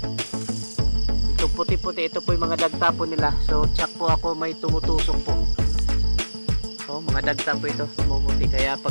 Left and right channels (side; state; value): both; inverted; correlation -1.00